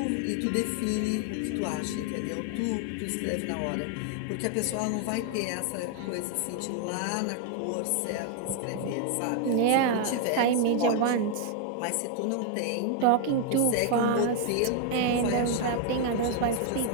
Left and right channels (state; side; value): different; both; correlation 0.00